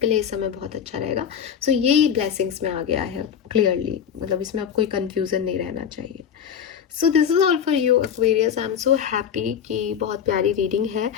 के लिए इस समय बहुत अच्छा रहेगा। सो ये ब्लेसिंग्स में आ गया है क्लियरली, मतलब इसमें अब कोई कंफ्यूजन नहीं रहना चाहिए। So this is all for you Aquarius. I am so happy कि बहुत प्यारी रीडिंग है।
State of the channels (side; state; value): right; quieter; 8.2 dB